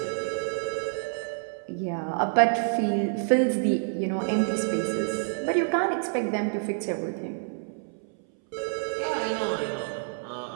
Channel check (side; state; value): left; silent; 60 dB below the other